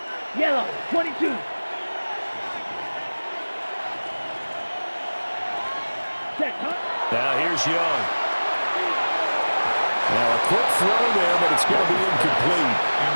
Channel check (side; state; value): both; inverted; correlation -1.00